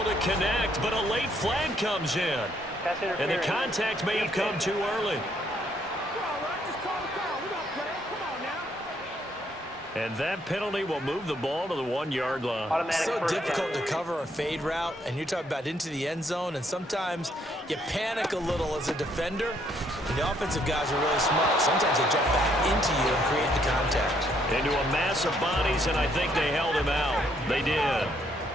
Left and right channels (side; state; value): both; normal; correlation 0.70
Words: to connect, but a late flag comes in. And the contact may have come too early. And that penalty will move the ball to the 1-yard line. So difficult to cover a fade route, and you're talking about into the end zone, and sometimes you panic a little as a defender, and the offensive guys are really smart. Sometimes they jump back into you and create the contact. Into a mass of bodies, and I think they held him out. They did.